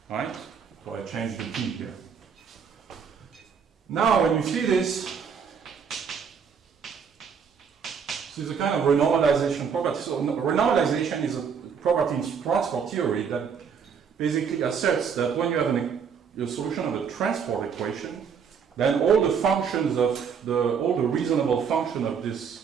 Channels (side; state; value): left; quieter; 6.7 dB